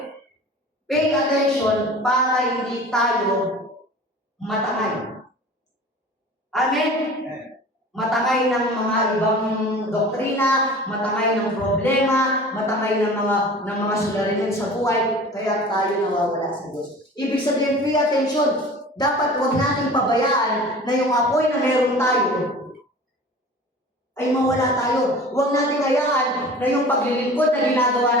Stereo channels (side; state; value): both; normal; correlation 0.41